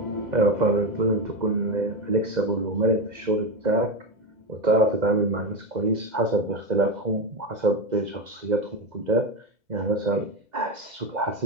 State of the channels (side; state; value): left; late; 2.0 ms